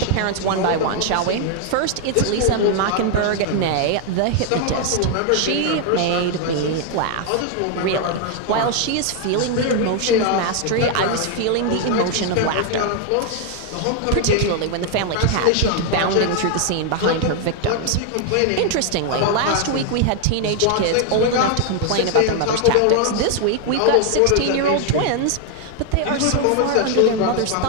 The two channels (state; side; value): different; both; correlation 0.00